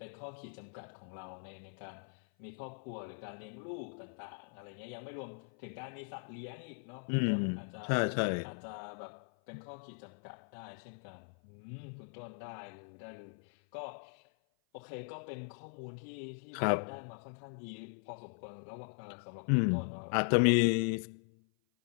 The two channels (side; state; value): right; silent; 52 dB below the other